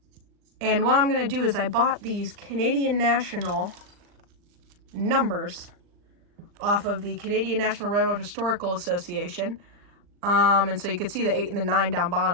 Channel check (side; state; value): left; late; 39 ms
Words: And what I'm going to do is I bought these Canadian National numbers off of the Canadian National Railroad Historical Association. And so you can see the 8 and the 9 down